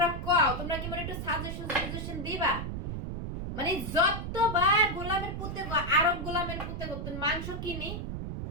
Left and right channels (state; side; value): noise; right; rumble, 5 dB below the sound